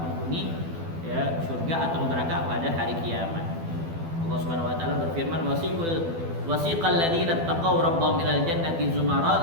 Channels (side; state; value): left; late; 12 ms